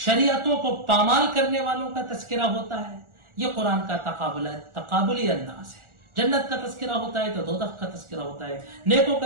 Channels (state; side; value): late; left; 1.4 ms